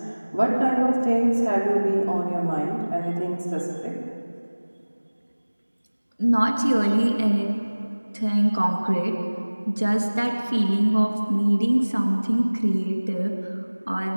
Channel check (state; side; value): inverted; both; correlation -1.00